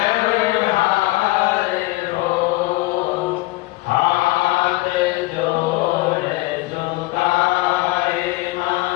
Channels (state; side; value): quieter; right; 20.4 dB